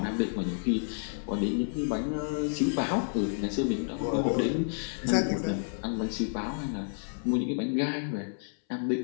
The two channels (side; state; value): right; silent; 58 dB below the other